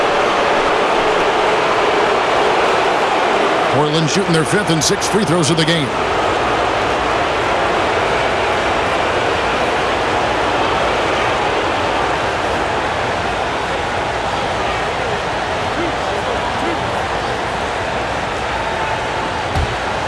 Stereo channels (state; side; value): identical; both; correlation 1.00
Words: Portland shooting their 5th and 6th free throws of the game.